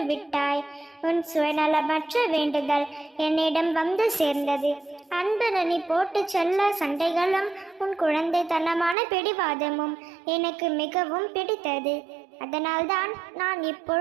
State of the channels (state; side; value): drops out; left; at 9.0 s